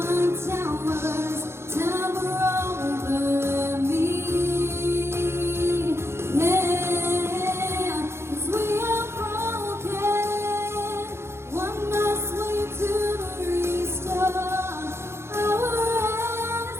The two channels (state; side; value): late; left; 0.12 ms